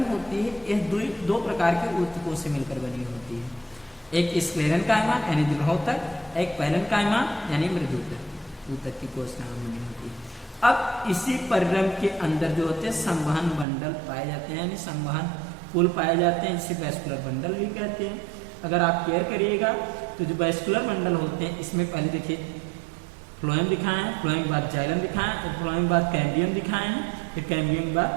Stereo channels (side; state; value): left; drops out; at 13.7 s